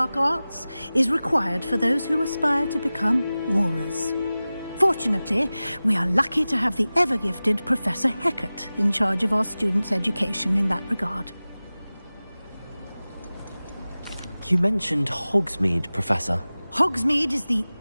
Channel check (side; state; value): both; inverted; correlation -0.97